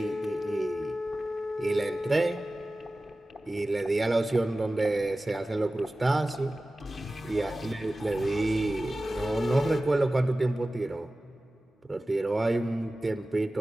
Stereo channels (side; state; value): both; normal; correlation 0.96